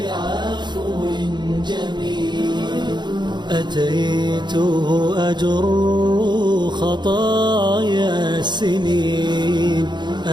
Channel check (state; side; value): late; left; 0.21 ms